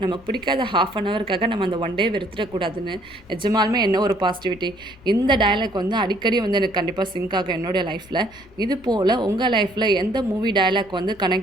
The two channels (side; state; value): left; noise; rumble, 24 dB below the sound